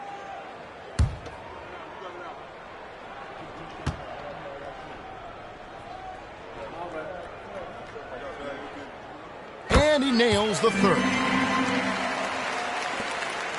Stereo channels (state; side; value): identical; both; correlation 1.00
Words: And he nails the third.